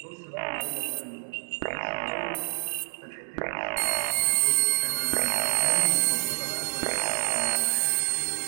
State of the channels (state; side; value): silent; left; digital silence